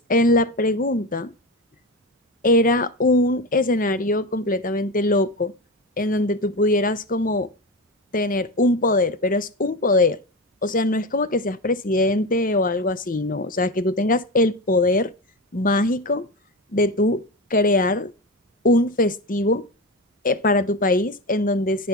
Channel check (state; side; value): normal; both; correlation 0.21